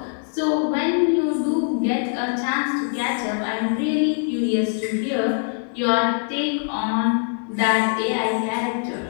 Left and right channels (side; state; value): right; silent; digital silence